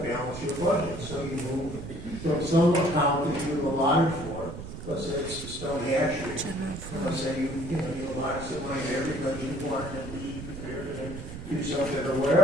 your budget. So you move from some account that you allotted for, let's say it's the stone hatchery. Let's say you allotted some money there because you wanted to be prepared to do something or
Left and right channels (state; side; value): noise; right; rumble, 10 dB below the sound